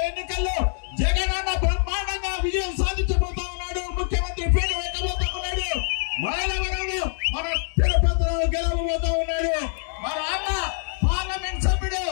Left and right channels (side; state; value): right; silent; digital silence